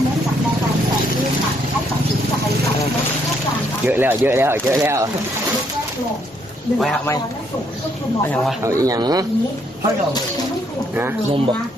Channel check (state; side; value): normal; both; correlation 0.71